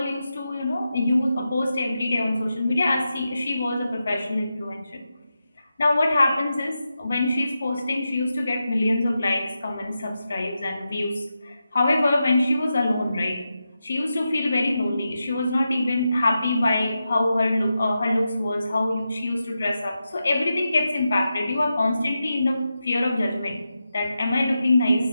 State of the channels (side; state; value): both; inverted; correlation -0.89